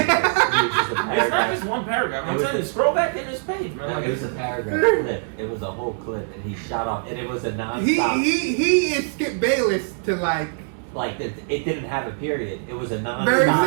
not just one paragraph. I'm telling you, scroll back in this page, man. Like, it was a paragraph clip. It was a whole clip, and he shot off, and it was a non-stop. He is Skip Bayless to like it didn't have a period. It was a non-stop. Barry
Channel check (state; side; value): silent; left; digital silence